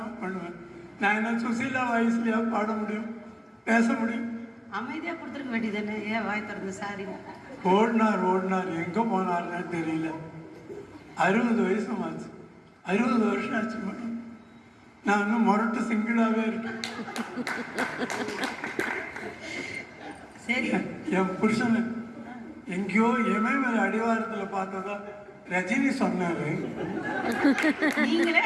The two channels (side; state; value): both; identical; correlation 1.00